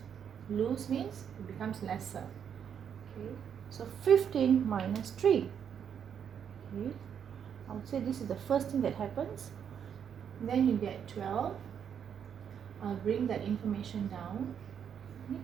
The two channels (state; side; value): quieter; left; 8.1 dB